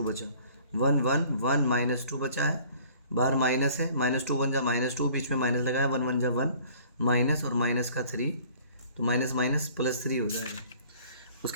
बचा, 1 1 1 -2 बचा है, बाहर माइनस है, -2 1 जा -2, बीच में माइनस लगाया, 1 1 जा 1 माइनस और माइनस का 3, तो माइनस माइनस +3 हो जाएगा।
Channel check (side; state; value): both; inverted; correlation -0.52